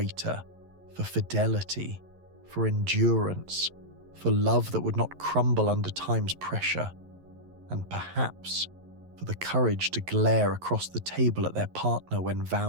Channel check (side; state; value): left; late; 11 ms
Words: for fidelity, for endurance, for love that would not crumble under time's pressure, and perhaps for the courage to glare across the table at their partner when